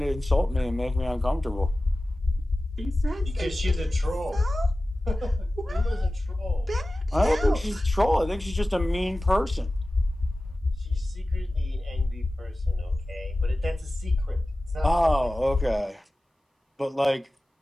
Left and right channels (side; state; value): both; normal; correlation 0.96